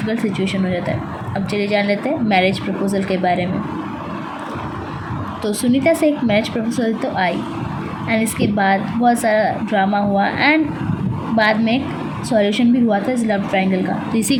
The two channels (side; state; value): both; identical; correlation 1.00